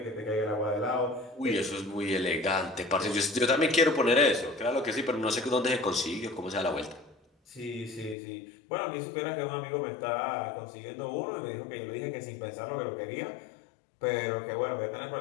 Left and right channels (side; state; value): right; drops out; at 8.2 s